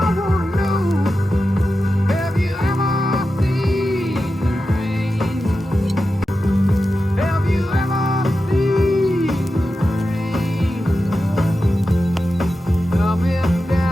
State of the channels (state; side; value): normal; both; correlation 0.91